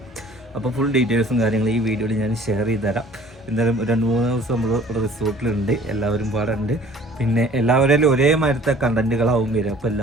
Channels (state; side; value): normal; both; correlation 0.51